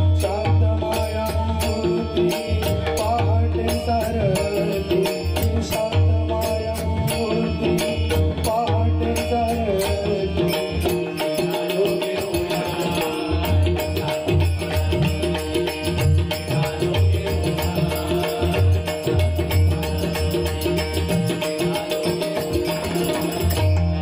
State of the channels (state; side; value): identical; both; correlation 1.00